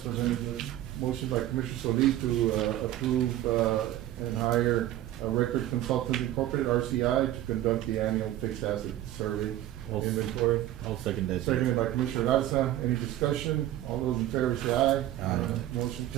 presented, Judge. Motion by Commissioner Solis to, approve, and hire a Record Consultant Incorporated, RCI, to conduct the annual fixed asset survey I'll- inventory. I'll second that. Seconded by Commissioner Garza. Any discussion? All those in favor say aye. Aye. Motion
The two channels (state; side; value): quieter; left; 13.7 dB